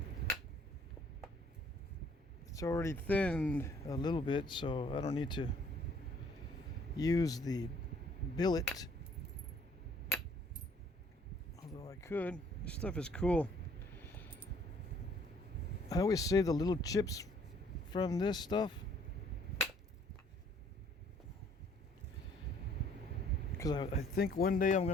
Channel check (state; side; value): normal; both; correlation 0.60